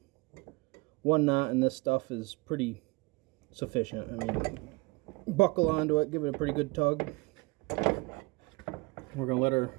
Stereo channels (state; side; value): quieter; left; 26.2 dB